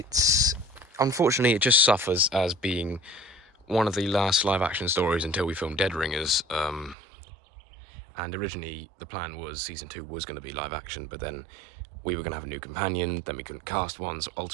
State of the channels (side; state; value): left; drops out; at 7.0 s